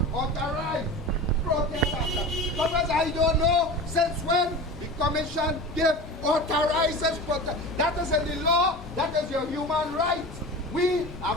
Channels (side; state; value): both; normal; correlation 0.32